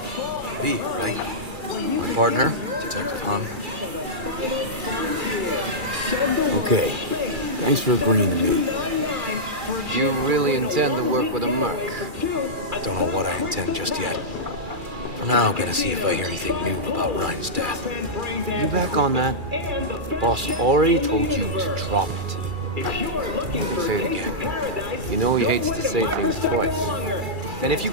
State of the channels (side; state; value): left; late; 2.3 ms